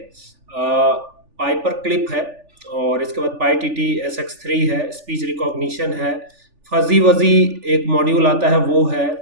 पाइपर क्लिप है, और इसके बाद पाईटीटी SX3 है, स्पीच रिकॉग्निशन है, फजी वजी एक मॉड्यूल आता है वो है,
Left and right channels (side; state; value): left; late; 3.4 ms